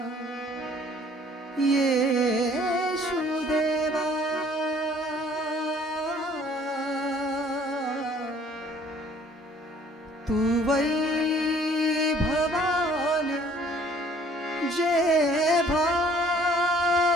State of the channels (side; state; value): both; normal; correlation 0.57